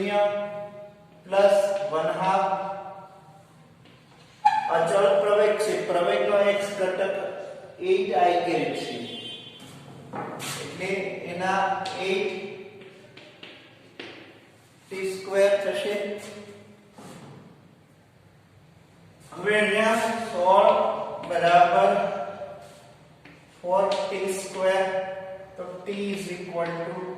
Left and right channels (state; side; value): identical; both; correlation 1.00